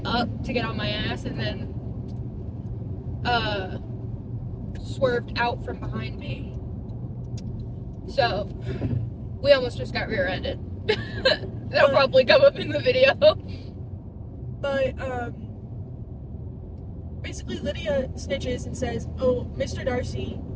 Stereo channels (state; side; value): identical; both; correlation 1.00